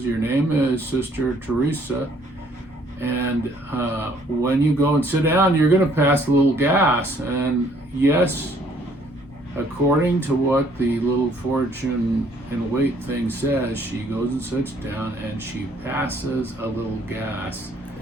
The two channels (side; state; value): both; normal; correlation 0.62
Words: "Your name is Sister Teresa, and when you go and sit down, you're going to pass a little gas." And yes, according to what the little fortune and weight thing says, she goes and sits down and she passes a little gas.